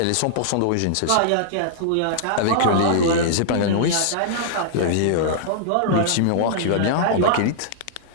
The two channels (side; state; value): both; different; correlation -0.02